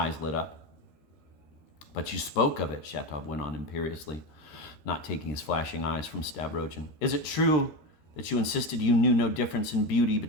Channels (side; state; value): right; late; 13 ms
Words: lit up. But you spoke of it, Shatov went on imperiously, not taking his flashing eyes from Stavrogin. Is it true that you insisted you knew no difference in beauty